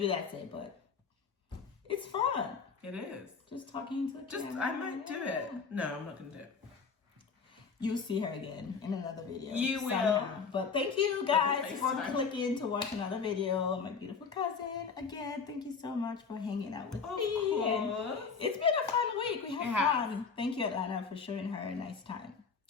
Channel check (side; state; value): right; quieter; 5.5 dB